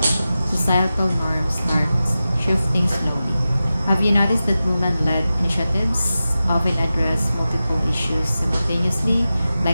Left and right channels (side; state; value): both; inverted; correlation -0.94